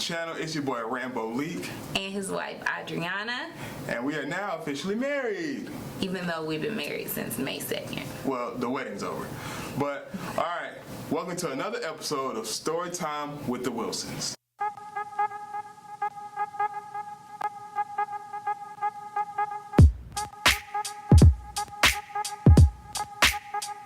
It's your boy Rambo Leak and his wife Adriana, and we are now officially married, even though we've been married since May 2nd. Well, the wedding's over, but alright, welcome to another episode of Storytime with the Wilsons.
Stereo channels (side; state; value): both; identical; correlation 1.00